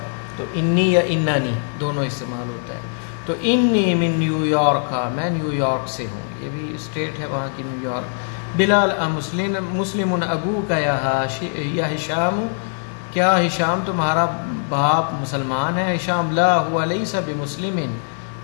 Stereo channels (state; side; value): silent; right; digital silence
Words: تو انی یا انانی دونوں استعمال ہوتا ہے۔ تو انی من نیو یارک، میں نیو یارک سے ہوں، یہ بھی اسٹیٹ ہے وہاں کی، نیو یارک۔ بلال مسلم ابو کا یا ہشام، کیا ہشام تمہارا باپ مسلمان ہے؟ ہشام لا ہوا لیسا بمسلم،